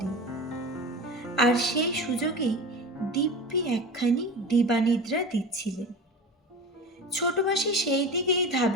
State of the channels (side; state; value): both; normal; correlation 0.31